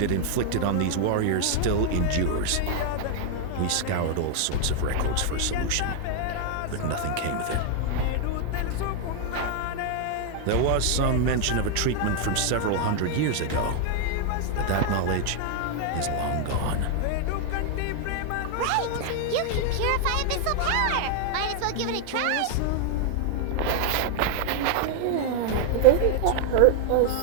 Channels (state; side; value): different; both; correlation 0.00